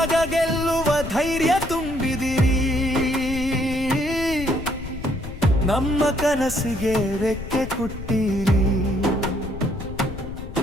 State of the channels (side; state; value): left; noise; rumble, 10 dB below the sound